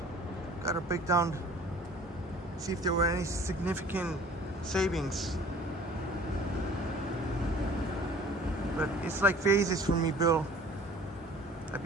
Gotta break down, see if there were any significant savings. But it's like phases for me, Bill. I've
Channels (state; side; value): normal; both; correlation 0.49